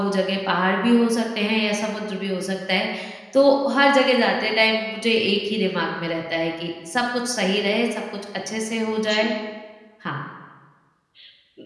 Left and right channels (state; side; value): identical; both; correlation 1.00